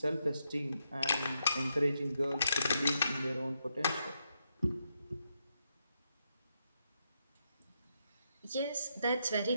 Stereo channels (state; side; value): inverted; both; correlation -0.81